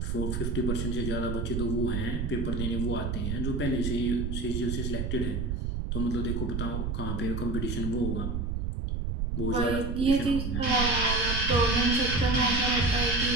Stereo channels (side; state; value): right; noise; rumble, 1 dB below the sound